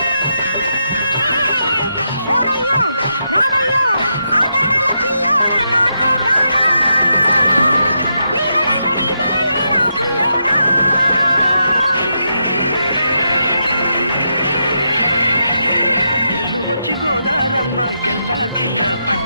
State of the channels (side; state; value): both; inverted; correlation -0.83